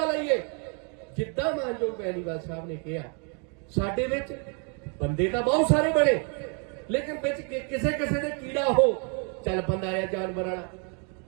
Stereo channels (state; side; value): quieter; left; 38.4 dB